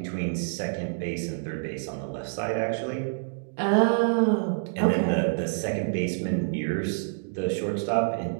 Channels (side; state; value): left; silent; digital silence